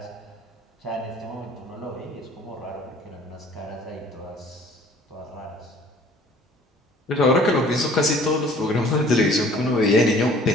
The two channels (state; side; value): normal; both; correlation 0.52